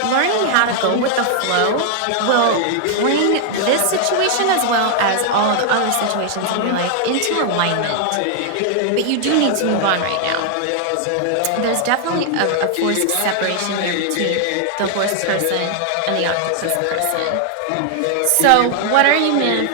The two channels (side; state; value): both; different; correlation 0.00